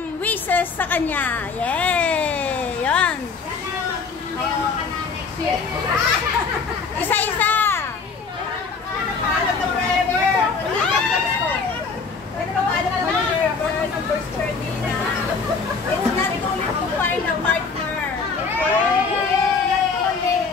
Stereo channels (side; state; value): right; quieter; 4.9 dB